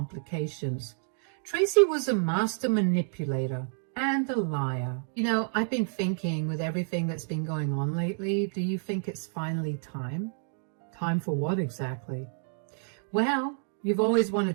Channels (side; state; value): left; silent; 56 dB below the other